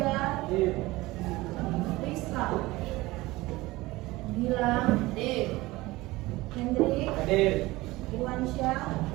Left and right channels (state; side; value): quieter; left; 19.8 dB